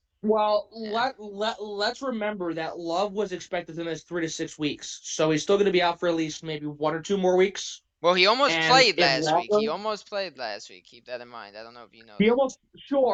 Well, Yeah. let's remember that Love was expected to miss 3 to 6 weeks, so he's still going to be out for at least maybe 1 or 2 more weeks. Well, he almost And played if last week. He Waller, almost played last week. Keep that in mind. I don't know if you know he that. almost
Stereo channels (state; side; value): identical; both; correlation 1.00